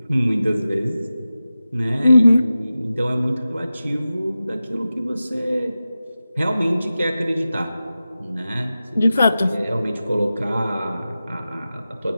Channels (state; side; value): inverted; both; correlation -0.94